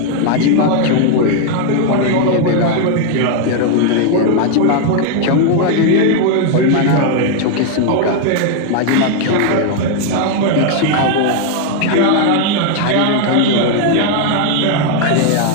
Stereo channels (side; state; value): both; different; correlation 0.00